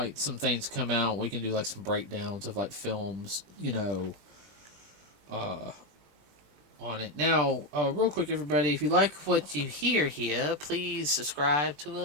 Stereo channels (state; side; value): late; left; 20 ms